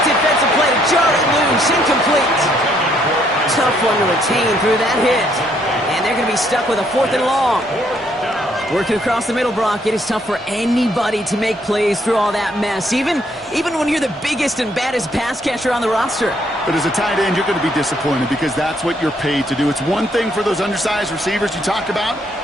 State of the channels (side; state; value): both; normal; correlation 0.69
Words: defensive play to jar it loose. Incomplete. Tough one to retain through that hit. And they're going to be stuck with a 4th and long. Working across the middle, Brock, it is tough for anybody to make plays through all that mess, even when you're the biggest and baddest pass catcher on the roster. But as a tight end, you're going to be disappointed because that's what you're paid to do. It's one thing for those undersized receivers you talked about.